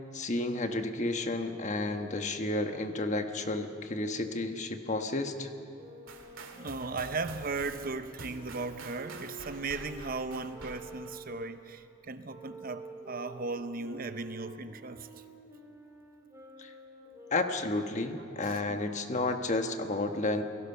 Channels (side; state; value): both; normal; correlation 0.27